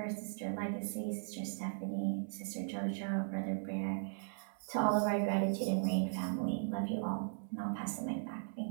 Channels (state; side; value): silent; left; digital silence